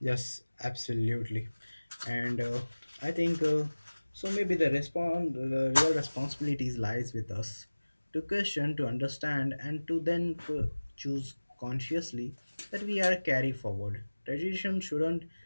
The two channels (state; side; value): inverted; both; correlation -1.00